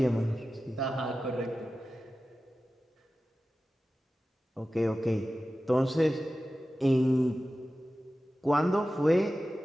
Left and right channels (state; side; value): normal; both; correlation 0.94